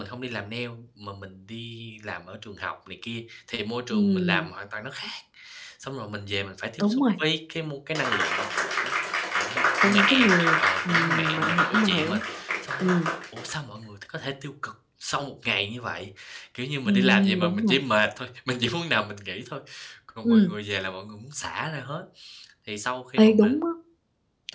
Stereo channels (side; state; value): both; identical; correlation 1.00